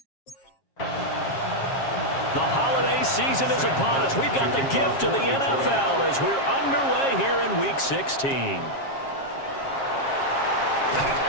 The holiday season is upon us. We've got the gift of the NFL as we're underway here in Week 16.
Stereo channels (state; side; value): late; right; 7.4 ms